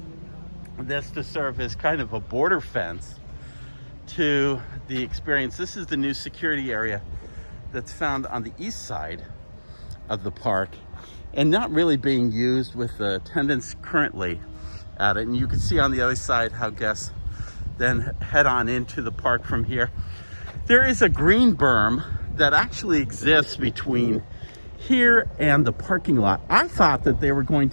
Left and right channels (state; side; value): inverted; both; correlation -1.00